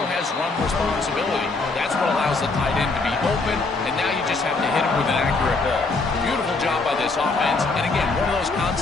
has run responsibility. That's what allows the tight end to be open, and now you just have to hit him with an accurate ball. Beautiful job by this offense. And again, one of those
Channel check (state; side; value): quieter; right; 3.7 dB